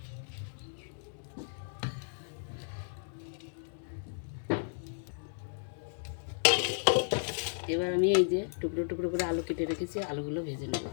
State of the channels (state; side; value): silent; right; digital silence